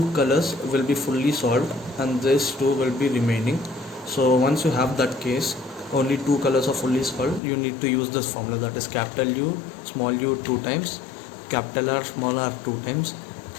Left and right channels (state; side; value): drops out; right; at 7.4 s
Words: colors will be fully solved and these two will be remaining. So once you have that case, only two colors are fully solved, you need to use this formula, that is capital U small u 2 times, capital R small r 2 times,